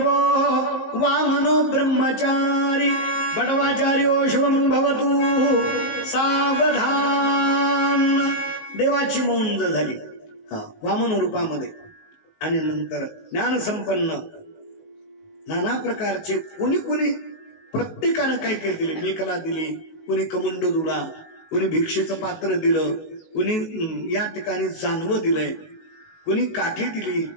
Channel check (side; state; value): right; late; 19 ms